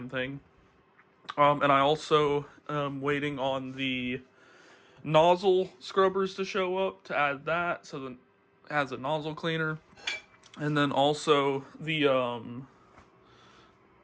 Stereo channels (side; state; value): both; identical; correlation 1.00